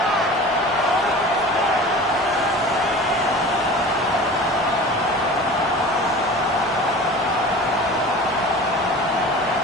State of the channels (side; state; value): both; normal; correlation 0.38